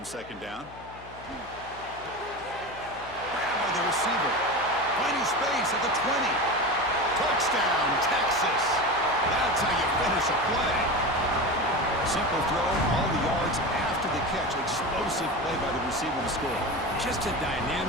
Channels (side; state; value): left; noise; hum, 19 dB below the sound